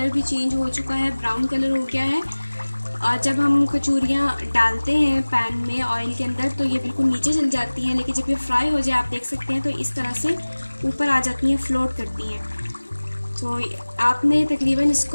भी चेंज हो चुका है, ब्राउन कलर हो गया है। और जब हम कचौरियाँ डालते हैं पैन में ऑयल के अंदर तो ये बिल्कुल नीचे चल जाती हैं, लेकिन जब ये फ्राई हो जाए आप देख सकते हैं तो इस तरह से ऊपर आ जाती हैं, फ्लोट करती हैं। तो आपने तकरीबन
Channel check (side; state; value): both; inverted; correlation -1.00